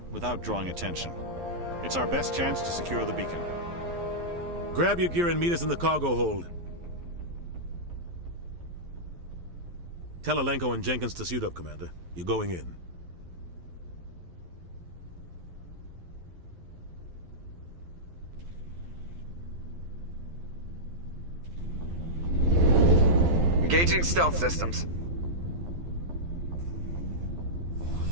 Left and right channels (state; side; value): late; left; 12 ms